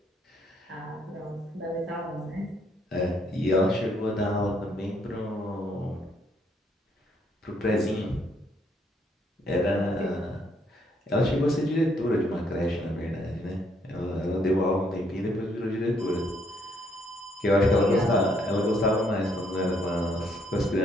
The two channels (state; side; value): normal; both; correlation 0.70